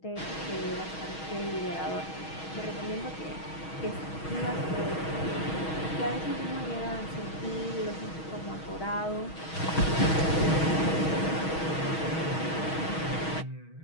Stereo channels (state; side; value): late; right; 6.3 ms